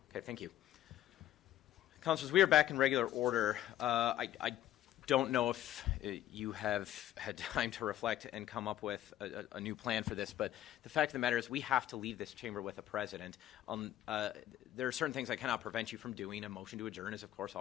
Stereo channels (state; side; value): quieter; right; 12.7 dB